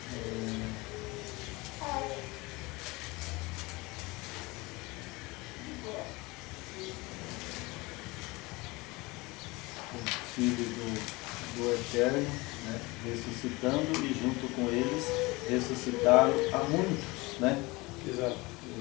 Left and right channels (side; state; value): right; quieter; 23.6 dB